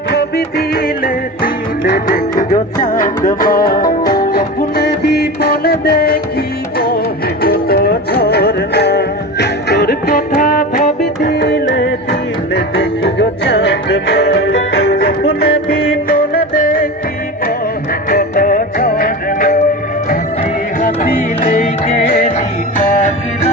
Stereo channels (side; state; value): both; normal; correlation 0.28